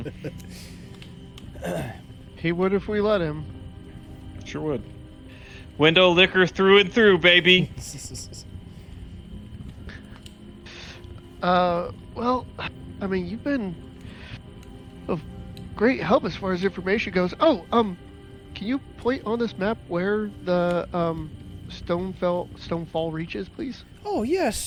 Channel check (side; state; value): both; identical; correlation 1.00